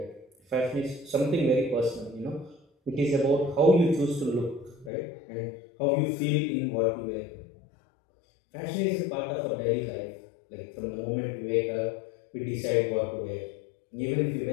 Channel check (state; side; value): drops out; right; at 4.9 s